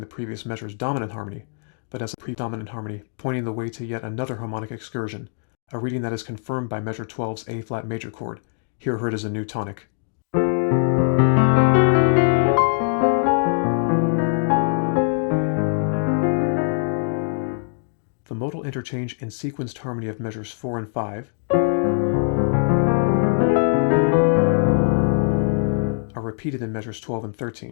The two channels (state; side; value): silent; right; digital silence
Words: previous measure's dominant harmony, but as a predominant harmony pointing the way to yet another harmonic excursion, a reading that is confirmed by measure 12's A-flat major chord, here heard as a new tonic. The modal interchange and sequenced harmony of measures 4 and 5 are repeated in measures 12 and